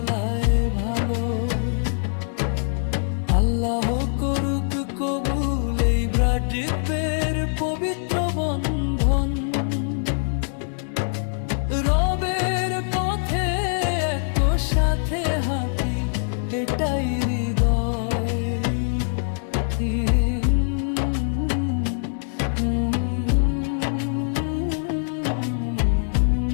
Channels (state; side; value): silent; right; digital silence